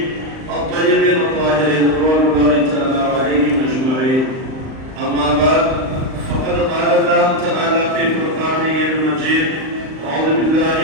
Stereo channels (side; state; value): left; late; 38 ms